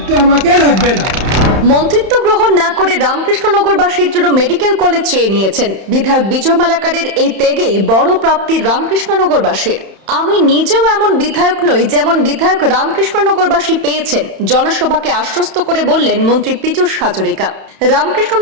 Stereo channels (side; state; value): left; late; 31 ms